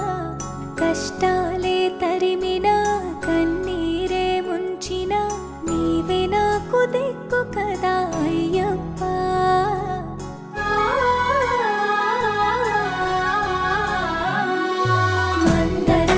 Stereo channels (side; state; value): both; identical; correlation 1.00